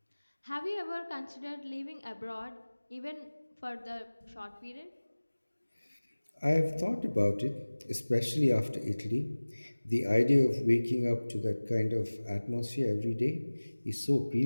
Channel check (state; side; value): inverted; both; correlation -1.00